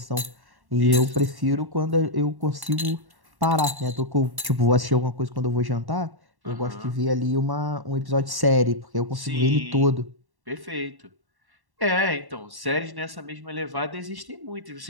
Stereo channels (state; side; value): late; left; 1.1 ms